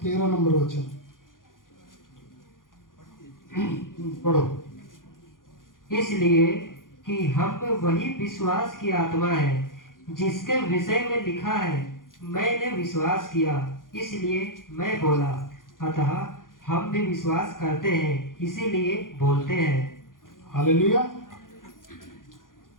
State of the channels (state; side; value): late; right; 0.90 ms